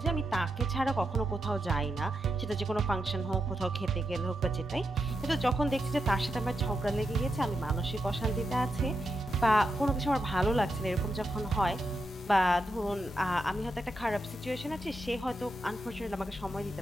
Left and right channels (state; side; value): normal; both; correlation 0.85